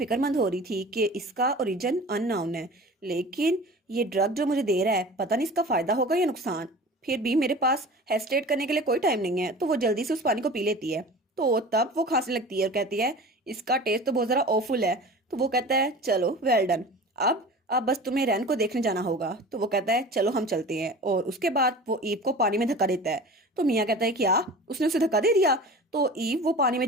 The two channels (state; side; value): normal; both; correlation 0.38